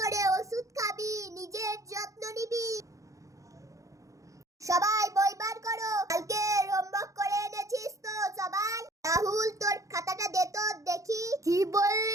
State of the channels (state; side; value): late; left; 0.16 ms